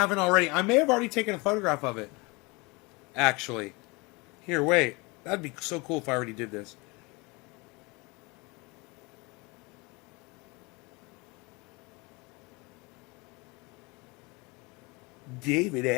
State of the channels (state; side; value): quieter; right; 26.6 dB